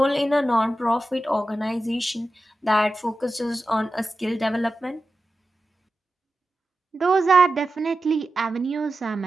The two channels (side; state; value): both; normal; correlation 0.92